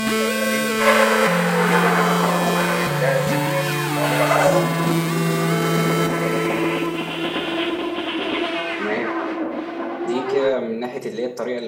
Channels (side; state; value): both; identical; correlation 1.00